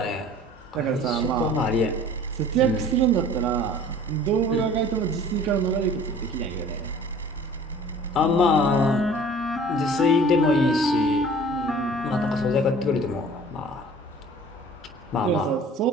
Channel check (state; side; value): normal; both; correlation 0.47